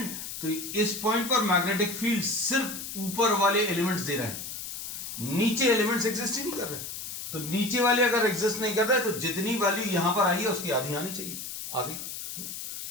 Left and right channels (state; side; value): noise; left; hiss, 8 dB below the sound